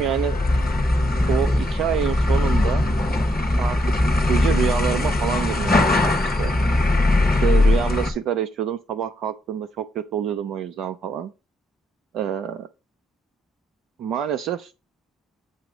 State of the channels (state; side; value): normal; both; correlation 0.77